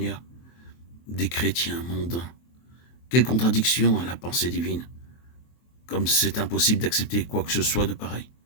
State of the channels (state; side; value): late; right; 23 ms